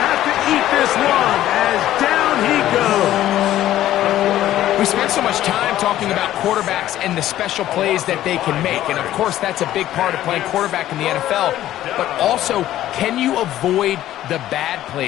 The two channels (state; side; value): quieter; right; 13.3 dB